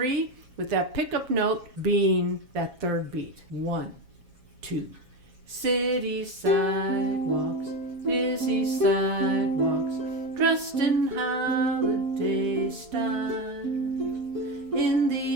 with that pickup note being that third beat. 1, 2. City sidewalks, busy sidewalks, dressed in holiday style. In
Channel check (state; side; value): late; left; 7.3 ms